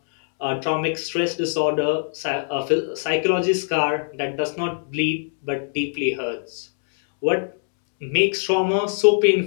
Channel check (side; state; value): right; silent; 64 dB below the other